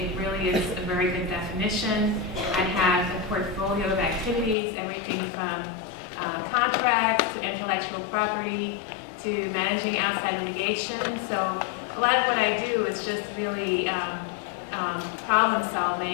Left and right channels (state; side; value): drops out; right; at 4.5 s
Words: really is a very good definition. I have a portfolio of activities, everything from contracts to intellectual property to managing outside litigation. So a lot of what I do is just really problem